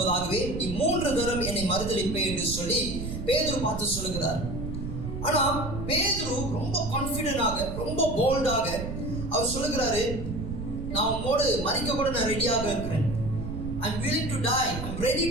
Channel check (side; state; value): right; noise; rumble, 6 dB below the sound